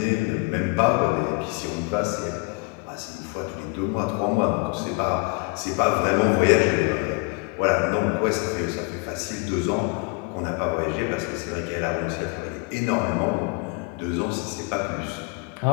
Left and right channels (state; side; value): quieter; right; 29.6 dB